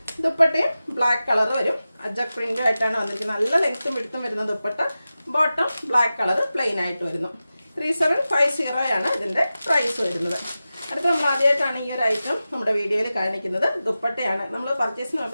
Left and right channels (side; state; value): both; inverted; correlation -0.94